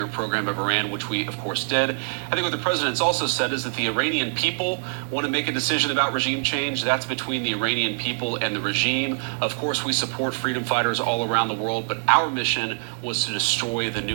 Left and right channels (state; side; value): silent; left; digital silence